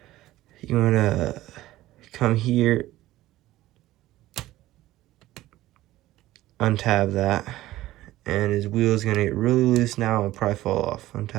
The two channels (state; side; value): quieter; left; 15.9 dB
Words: You want to come here, untab that, and his wheel is going to get really loose now and probably fall off.